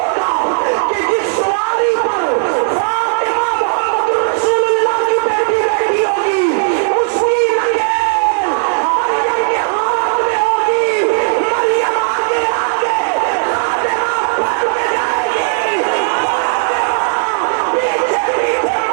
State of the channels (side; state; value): left; silent; digital silence